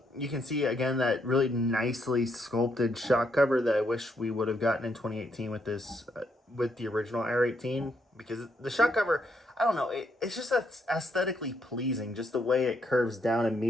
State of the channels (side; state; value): both; normal; correlation 0.75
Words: You can see again that really nicely sculpted shock cover that I wish we would have gotten in 2018 with this, with the original R18, because the shock cover, I don't know, it's just aesthetically pleasing, just the way it curves down and